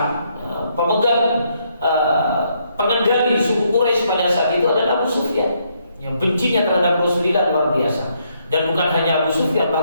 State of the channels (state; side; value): inverted; both; correlation -0.74